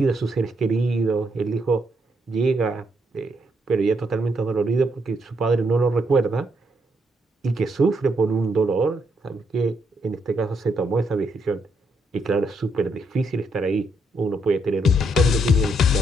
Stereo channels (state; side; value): normal; both; correlation 0.76